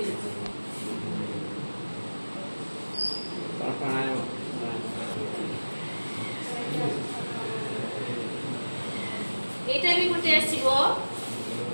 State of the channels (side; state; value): both; inverted; correlation -1.00